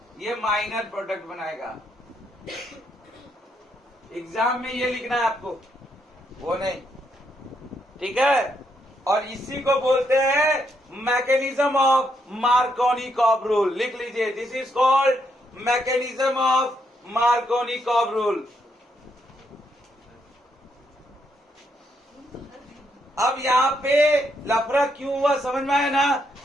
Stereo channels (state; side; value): normal; both; correlation 0.76